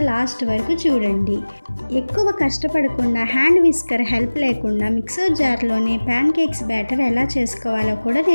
లాస్ట్ వరకు చూడండి. ఎక్కువ కష్టపడకుండా హ్యాండ్ విస్కర్ హెల్ప్ లేకుండా మిక్సర్ జార్లోనే ప్యాన్కేక్స్ బ్యాటర్ ఎలా చేసుకోవాలో కూడా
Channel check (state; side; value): inverted; both; correlation -1.00